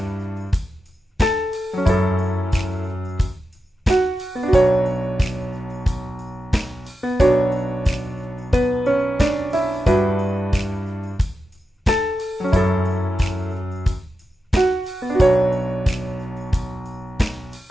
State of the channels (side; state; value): both; normal; correlation 0.90